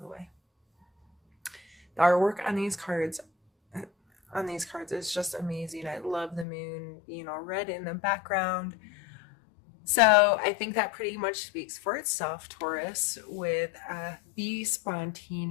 the way. The artwork on these cards is just amazing. I love the moon being all red in the background. So I think that pretty much speaks for itself, Taurus, with be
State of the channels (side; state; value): right; drops out; at 6.5 s